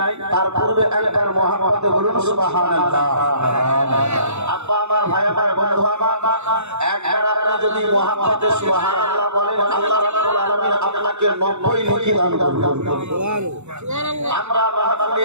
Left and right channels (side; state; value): left; late; 0.82 ms